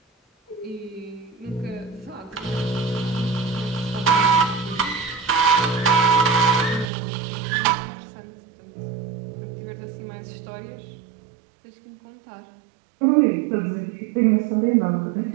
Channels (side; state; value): left; drops out; at 6.9 s